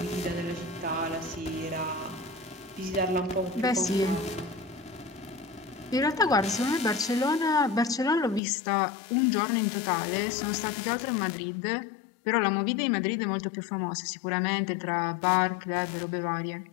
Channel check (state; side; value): drops out; right; at 8.4 s